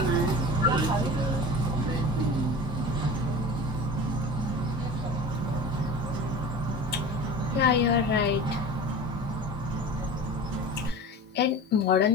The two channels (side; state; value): both; normal; correlation 0.34